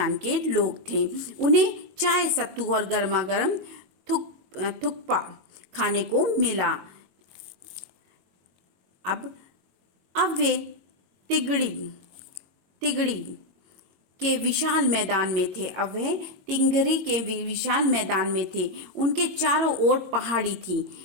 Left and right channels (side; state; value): left; late; 22 ms